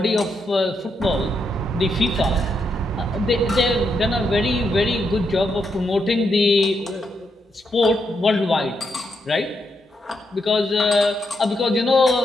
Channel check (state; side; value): normal; both; correlation 0.81